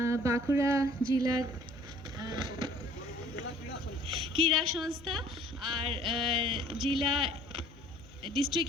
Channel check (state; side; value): noise; left; hum, 24 dB below the sound